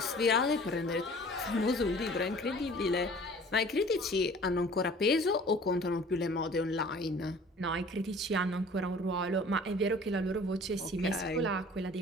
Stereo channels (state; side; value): normal; both; correlation 0.48